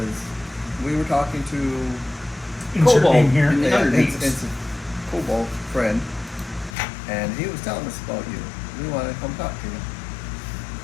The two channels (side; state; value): right; drops out; at 6.8 s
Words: we were talking to Insert Cobalt. name here. Yeah. Underneath. it's a Cobalt friend, and he was telling us about you. We want to come talk to you.